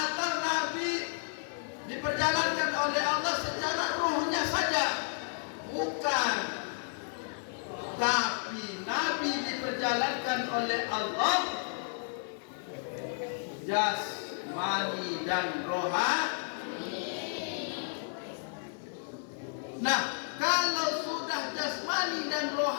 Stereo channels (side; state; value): right; silent; 56 dB below the other